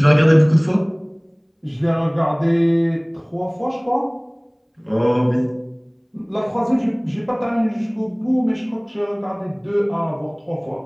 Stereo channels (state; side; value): identical; both; correlation 1.00